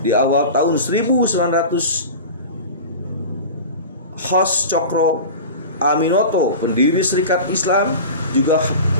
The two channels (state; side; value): inverted; both; correlation -0.32